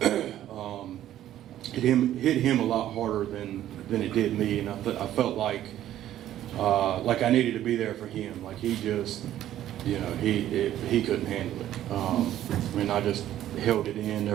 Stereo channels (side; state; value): left; quieter; 12.4 dB